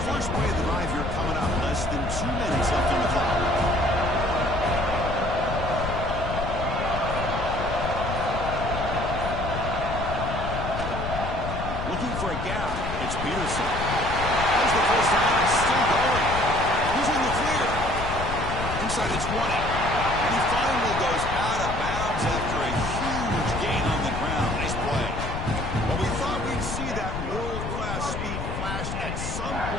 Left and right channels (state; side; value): noise; left; rumble, 5 dB below the sound